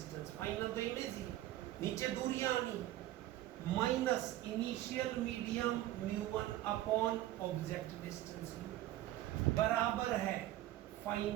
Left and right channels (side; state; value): left; quieter; 14.5 dB